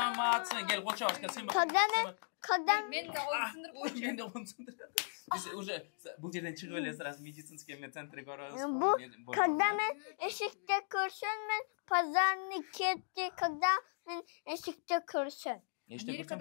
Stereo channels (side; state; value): right; silent; digital silence